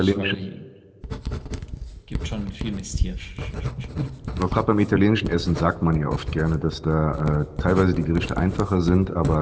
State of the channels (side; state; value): both; identical; correlation 1.00